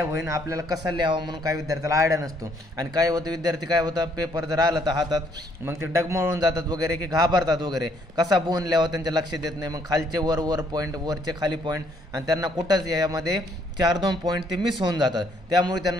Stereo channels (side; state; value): both; normal; correlation 0.67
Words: होईल, आपल्याला कसा लिहावा म्हणून काही विद्यार्थ्याला आयडिया नसतो आणि काय होतं, विद्यार्थी काय होतं पेपर जर आला तर हातात मग ते डगमळून जातात वगैरे की घाबरतात वगैरे, कसा बोन लिहावा त्यांच्या लक्षात येत नाही। मग खालचे वर पॉईंट, वरचे खाली पॉईंट आणि त्यांना कुठंच यामध्ये 4-2 पॉईंट ते मिस होऊन जातात, त्यामुळे